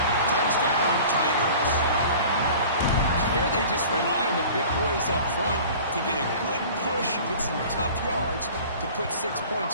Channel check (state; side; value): inverted; both; correlation -0.43